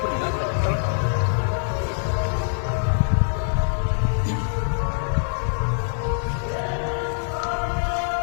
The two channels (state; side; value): silent; right; digital silence